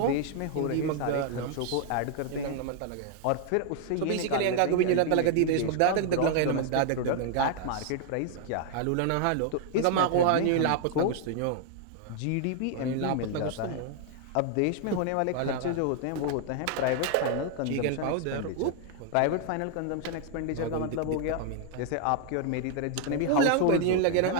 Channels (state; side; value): different; both; correlation 0.00